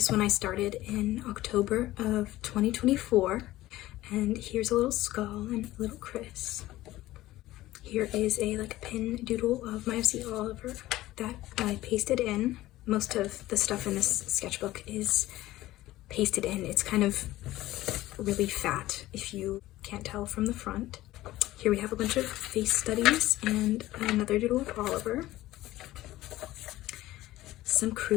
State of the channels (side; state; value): right; quieter; 16.3 dB